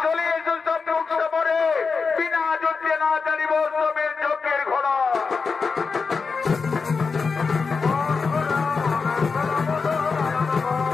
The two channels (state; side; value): quieter; right; 4.9 dB